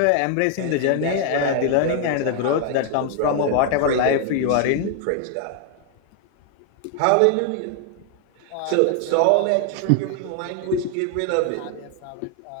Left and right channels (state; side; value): different; both; correlation 0.00